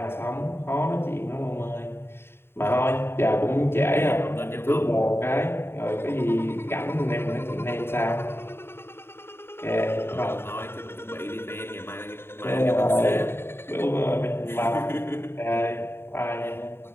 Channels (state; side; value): late; right; 0.11 ms